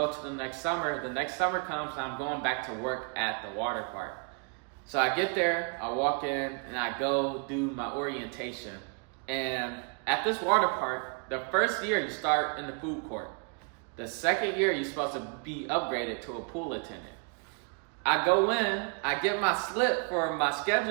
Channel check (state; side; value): quieter; left; 38.5 dB